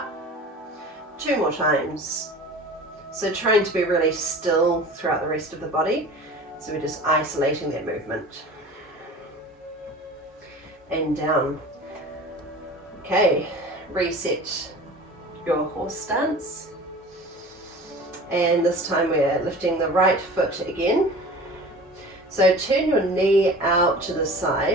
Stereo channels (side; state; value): both; normal; correlation 0.39